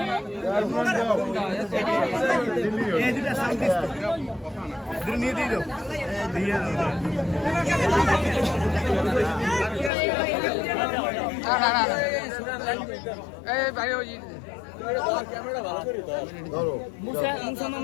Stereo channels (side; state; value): right; drops out; at 9.9 s